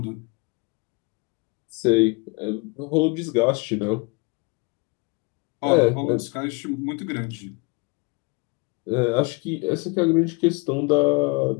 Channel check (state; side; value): quieter; right; 29.5 dB